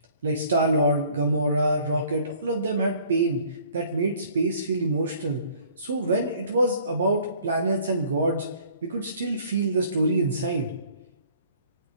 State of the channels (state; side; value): inverted; both; correlation -0.56